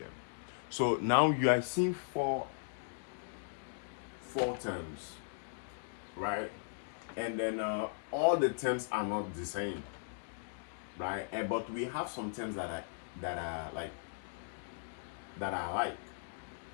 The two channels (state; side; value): silent; right; digital silence